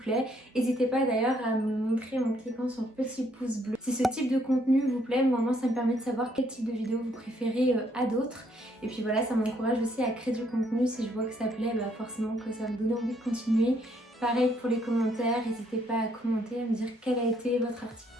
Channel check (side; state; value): both; normal; correlation 0.69